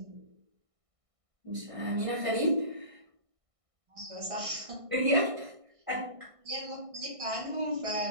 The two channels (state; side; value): late; left; 1.6 ms